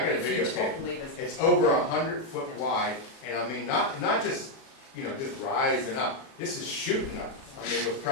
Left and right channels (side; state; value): right; late; 37 ms